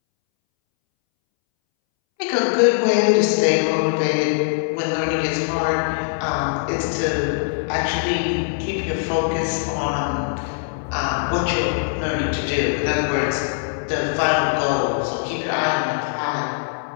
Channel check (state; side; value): silent; right; 63 dB below the other